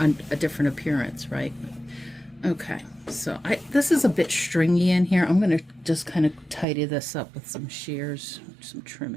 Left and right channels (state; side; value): drops out; left; at 6.7 s